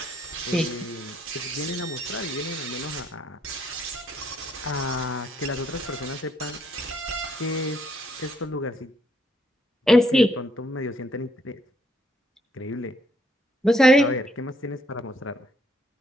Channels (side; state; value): both; normal; correlation 0.70